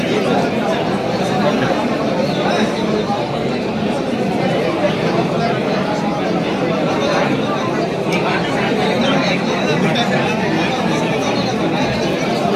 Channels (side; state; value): both; identical; correlation 1.00